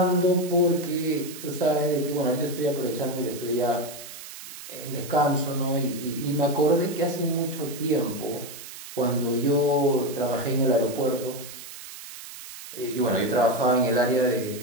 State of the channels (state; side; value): noise; right; hiss, 13 dB below the sound